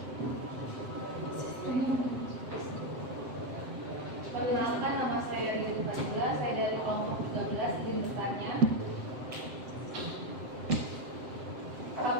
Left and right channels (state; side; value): late; left; 7.7 ms